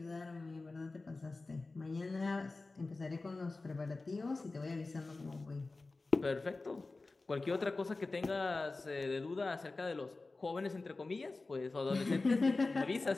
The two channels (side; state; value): right; quieter; 3.5 dB